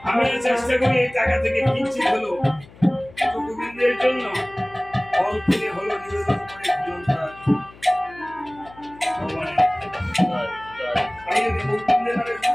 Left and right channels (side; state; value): left; noise; hum, 22 dB below the sound